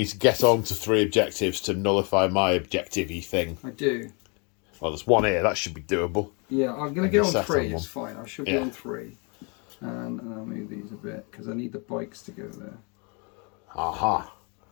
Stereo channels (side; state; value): right; quieter; 33.3 dB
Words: to get on to 3 objectives to nullify my objective-y thing. I do. Well, there's 1 here. That should be doable. Yeah, I'm going to get on set 3. on It's fine. I should be on 3. And I'll move these a bit because I need the bikes to go there. Aha.